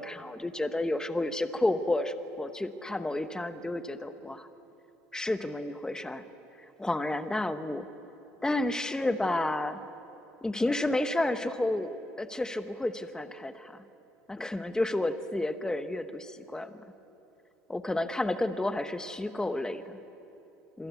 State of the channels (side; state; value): both; normal; correlation 0.89